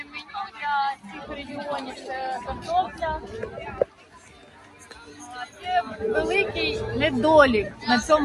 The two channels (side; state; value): both; identical; correlation 1.00